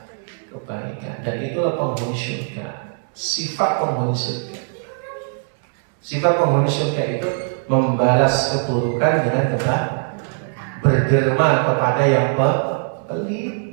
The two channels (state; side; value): silent; left; 64 dB below the other